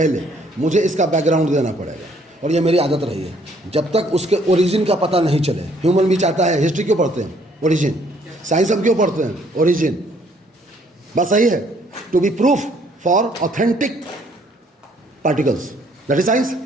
मुझे इसका बैकग्राउंड देना पड़ेगा, और ये मेरी आदत रही है। जब तक उसके ओरिजिन का पता नहीं चले, ह्यूमन भी चाहता है, हिस्ट्री क्यों पढ़ते हैं? ओरिजिन। साइंस हम क्यों पढ़ते हैं? ओरिजिन। बस सही है, to be proof for authentic particles, that is science.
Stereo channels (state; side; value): normal; both; correlation 0.64